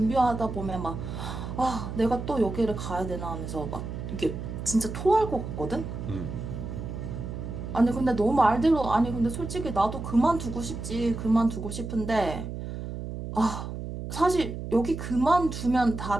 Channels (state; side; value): noise; right; hum, 7 dB below the sound